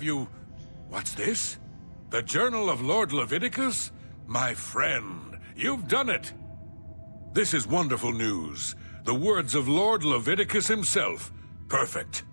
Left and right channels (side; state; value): both; inverted; correlation -1.00